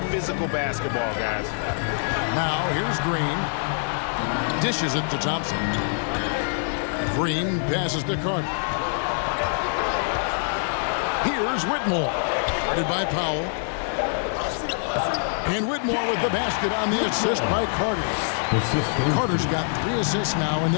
physical basketball, guys. Now here's Green. Dishes it to Thompson. Green passes to Carter. Here's Whitmore. Guarded by Powell. And Whitmore with the basket on the assist by Carter. Carter's got 3 assists now in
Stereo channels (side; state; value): right; silent; digital silence